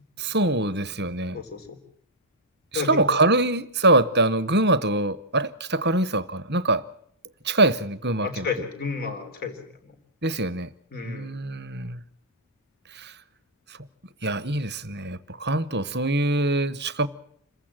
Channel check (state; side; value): normal; both; correlation -0.11